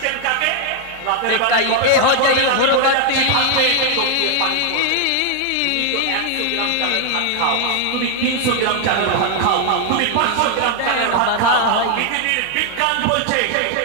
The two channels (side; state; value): both; different; correlation 0.00